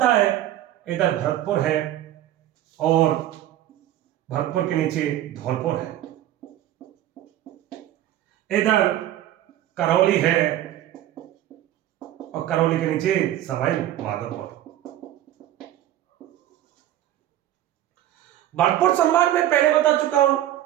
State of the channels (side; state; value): left; quieter; 12.9 dB